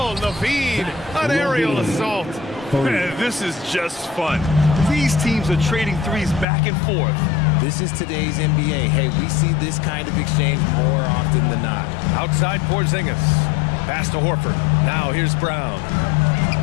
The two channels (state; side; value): drops out; right; at 6.5 s